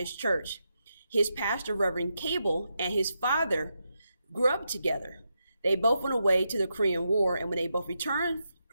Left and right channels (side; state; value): both; inverted; correlation -0.85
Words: church. His pastor, Reverend Cable, and his father grew up together. They both went away to the Korean War, and when they both returned